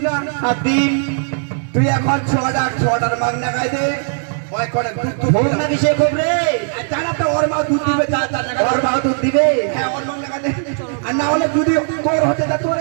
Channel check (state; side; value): silent; left; digital silence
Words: না হাতিম তুই এখন ছটার মাগনা খাই দে ওই করে দুধ ভোগ না কিসে খুব রে জানা তো ওর মা দুধ দিবে ওর মা দুধ দিবে হ্যাঁ ওর মাগনা খাই দে আর না হলে যদি তোর হতে তা তোর